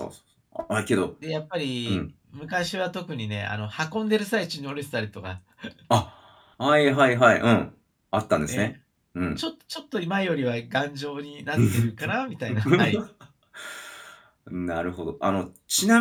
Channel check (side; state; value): both; identical; correlation 1.00